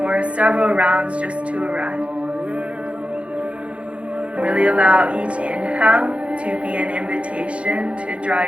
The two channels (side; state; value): left; late; 0.061 ms